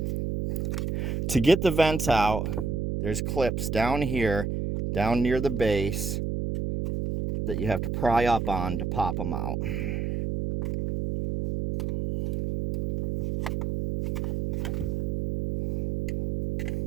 To get the vents out, there's clips down here, down near the base, that you have to pry up on to pop them out.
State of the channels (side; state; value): right; noise; hum, 1 dB below the sound